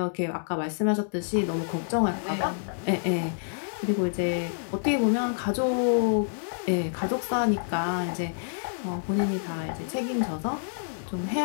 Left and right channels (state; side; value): silent; right; 60 dB below the other